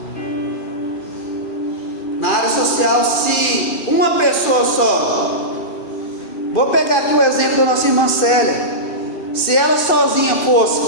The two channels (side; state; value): right; late; 2.4 ms